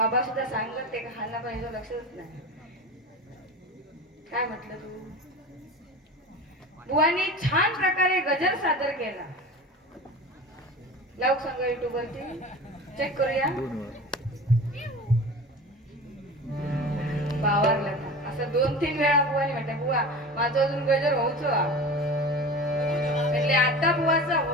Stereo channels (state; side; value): normal; both; correlation 0.34